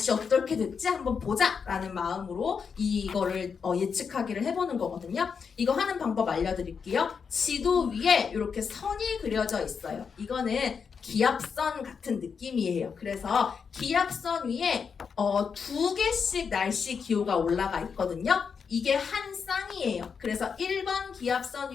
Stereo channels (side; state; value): right; quieter; 6.1 dB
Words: 어떻게 됐지 한번 보자 라는 마음으로 이거를 예측하기를 해보는 거거든요. 이거 하는 방법 알려드릴게요. 지도 위에 이렇게 선이 그려져 있어요. 이거는 기압선 같은 느낌이에요. 그래서 기압선 위에 두 개씩 날씨 기호가 올라가 있거든요. 이게 한 쌍이에요. 그래서 1번 기압선